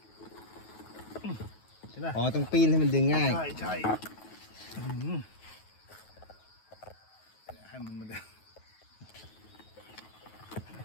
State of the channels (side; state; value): right; late; 9.3 ms